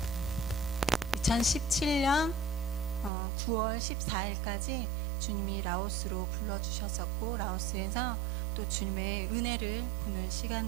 9월 14일까지 주님이 라오스로 불러주셨었고, 라오스에서 또 주님의 은혜를 보는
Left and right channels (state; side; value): drops out; left; at 3.1 s